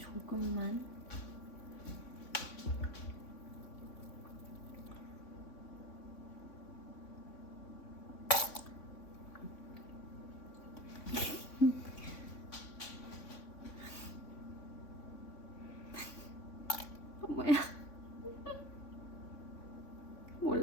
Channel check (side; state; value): right; late; 3.6 ms